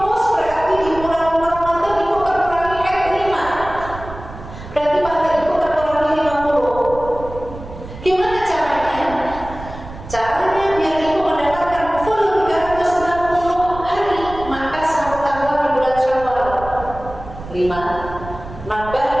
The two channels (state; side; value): noise; right; rumble, 13 dB below the sound